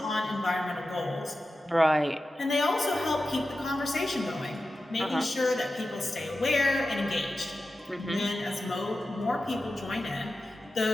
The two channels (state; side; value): normal; both; correlation 0.93